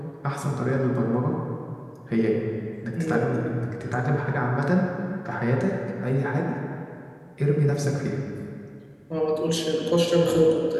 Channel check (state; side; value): identical; both; correlation 1.00